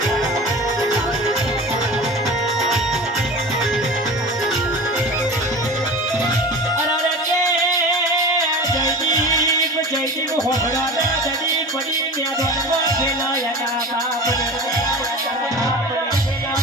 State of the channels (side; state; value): both; normal; correlation 0.34